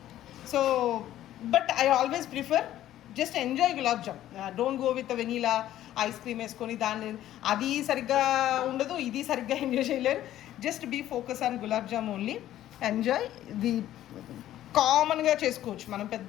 So but I always prefer just enjoy gulab jam, don't go with vanilla ice cream వేసుకొని అది సరిగ్గా ఉండదు, ఇది సరిగ్గా ఎంజాయ్ చేయలేరు. Just be focus on gulab jam only, enjoy. ఇది కామన్గా చేసుకోవచ్చు, మనం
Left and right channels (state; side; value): quieter; right; 12.9 dB